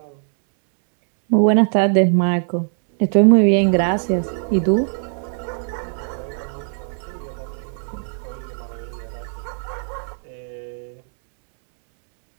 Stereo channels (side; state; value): left; silent; 65 dB below the other